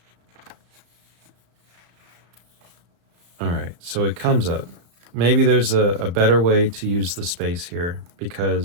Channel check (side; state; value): left; late; 34 ms